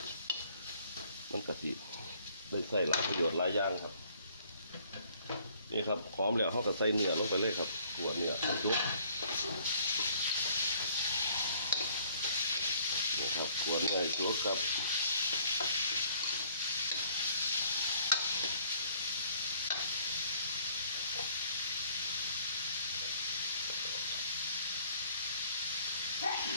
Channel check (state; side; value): inverted; both; correlation -0.60